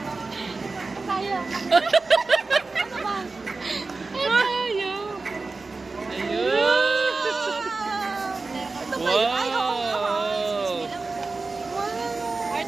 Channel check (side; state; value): left; quieter; 3.8 dB